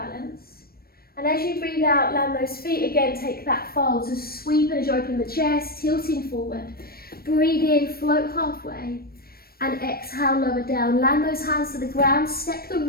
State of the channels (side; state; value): right; late; 0.44 ms